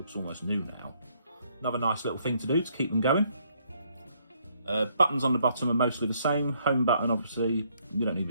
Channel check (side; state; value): both; inverted; correlation -0.69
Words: almost new now. Another nice little thing to do to keep them going. Buttons on the bottom are mostly the same. Home button, obviously, you don't need